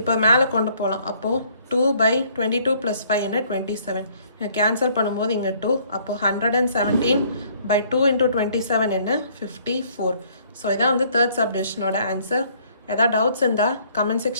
மேலே கொண்டு போகலாம். அப்போது 2/22 ப்ளஸ் 5 என்ன? 27. கேன்சல் பண்ணும்போது இங்கே 2. அப்போது 117/2 × 27 என்ன? 54. ஸோ இதான் வந்து தேர்ட் சப்டிவிஷனோட ஆன்சர். ஏதாவது டவுட்ஸ் இருந்தால் கமெண்ட்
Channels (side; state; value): both; inverted; correlation -0.62